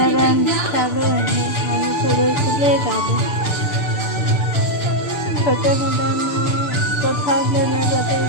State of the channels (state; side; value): late; right; 6.9 ms